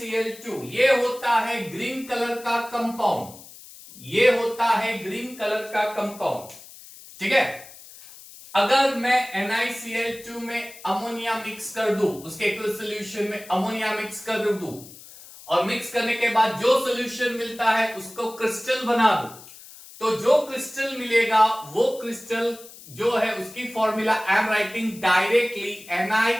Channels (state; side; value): noise; left; hiss, 18 dB below the sound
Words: ये होता है ग्रीन कलर का कंपाउंड. ये होता है ग्रीन कलर का कंपाउंड. ठीक है. अगर मैं NiCl2 में अमोनिया मिक्स कर दूं, उसके एक्वस सॉल्यूशन में अमोनिया मिक्स कर दूं और मिक्स करने के बाद जो सॉल्यूशन मिलता है उसको क्रिस्टल बना दूं, तो जो क्रिस्टल मिलेगा वो क्रिस्टल जो है उसकी formula I am writing directly